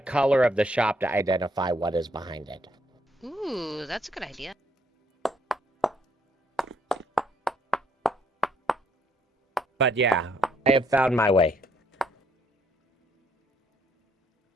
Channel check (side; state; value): both; normal; correlation 0.69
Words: color of the shop to identify what is behind it. Ooh, that's a good idea. But yeah, I have found my way.